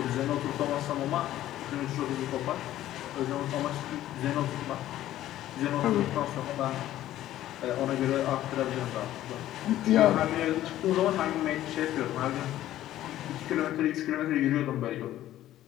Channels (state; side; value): quieter; right; 13.5 dB